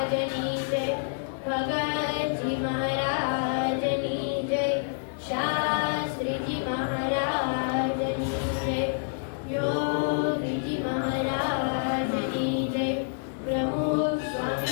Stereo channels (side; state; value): right; silent; digital silence